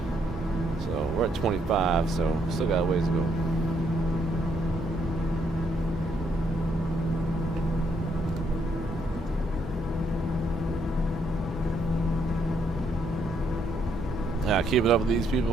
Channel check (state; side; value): normal; both; correlation 0.73